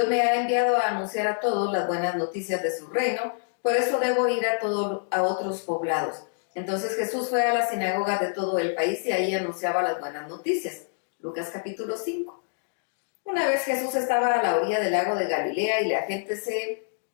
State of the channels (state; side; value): silent; right; digital silence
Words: me ha enviado a anunciar a todos las buenas noticias de su reino, por eso debo ir a otros poblados. Entonces Jesús fue a las sinagogas de todo el país y ahí anunciaba las buenas noticias. Lucas capítulo 5. Una vez Jesús estaba a la orilla del lago de Galilea y la gente se